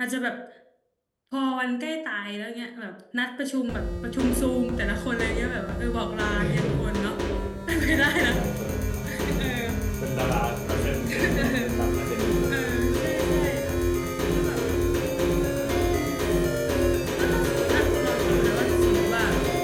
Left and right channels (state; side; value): identical; both; correlation 1.00